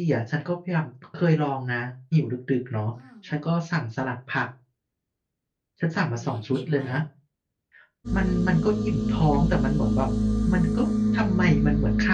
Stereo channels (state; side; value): identical; both; correlation 1.00